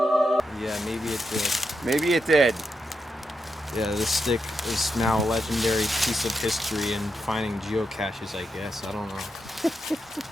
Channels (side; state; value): both; normal; correlation 0.85